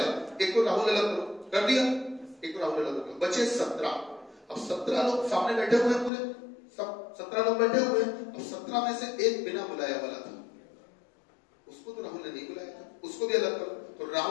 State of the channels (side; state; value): right; drops out; at 6.1 s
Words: एक को राहुल अलग करो, कर दिया, एक को राहुल अलग करो, बचे 17। अब 17 लोग सामने बैठे हुए हैं, पूरे सब 17 लोग बैठे हुए हैं। अब 17 में से एक बिना बुलाया वाला था, उसको तो राहुल ने नहीं बुलाया था, उसको भी अलग करो। तो